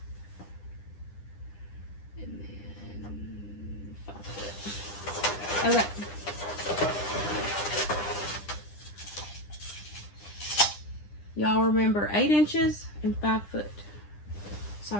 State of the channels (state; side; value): late; right; 9.9 ms